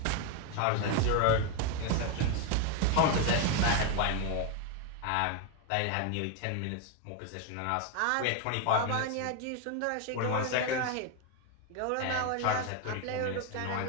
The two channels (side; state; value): both; different; correlation 0.01